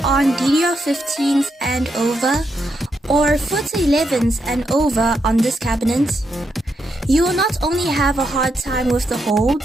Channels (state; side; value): normal; both; correlation 0.81